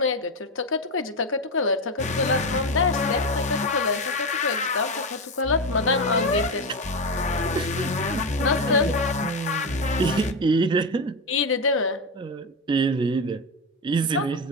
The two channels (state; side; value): normal; both; correlation 0.14